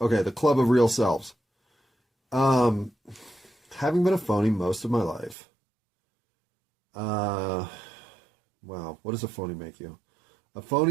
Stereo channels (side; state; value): left; drops out; at 5.4 s